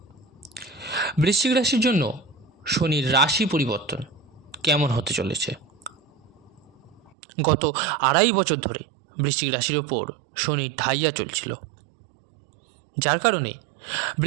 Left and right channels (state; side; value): drops out; left; at 7.1 s